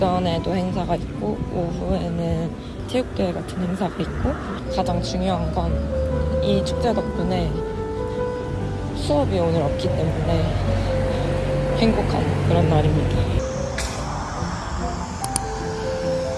행사가 있고 오후에는 체육대회 같은 행사가 있고 가장 중요한 건 이 축제 덕분에 수업이 오늘 없기 때문에 행복한 그런 날입니다.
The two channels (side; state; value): both; identical; correlation 1.00